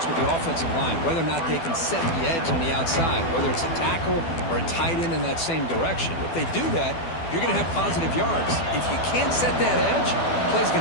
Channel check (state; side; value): late; right; 12 ms